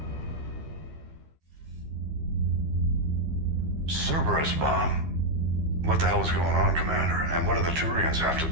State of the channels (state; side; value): late; left; 12 ms